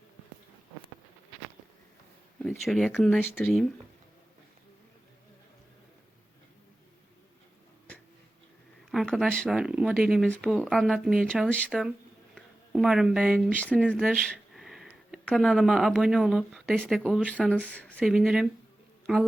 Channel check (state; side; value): normal; both; correlation 0.95